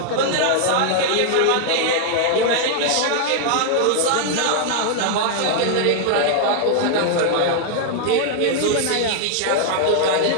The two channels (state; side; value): different; both; correlation 0.00